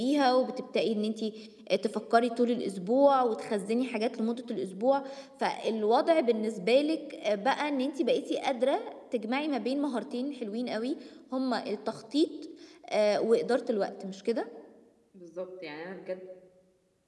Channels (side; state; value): both; identical; correlation 1.00